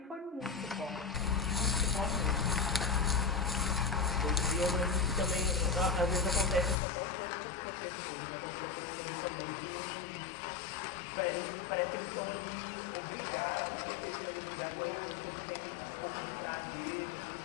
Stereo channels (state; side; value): drops out; right; at 6.8 s